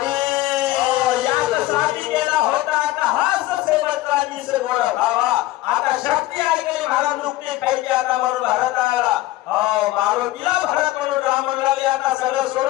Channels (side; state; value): right; quieter; 16.7 dB